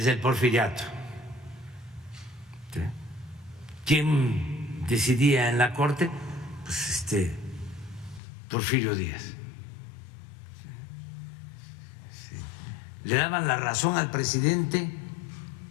el porfiriato. ¿Sí? ¿Quién decidía en la Corte? Pues Porfirio Díaz. Le daban la razón al presidente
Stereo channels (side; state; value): right; drops out; at 8.2 s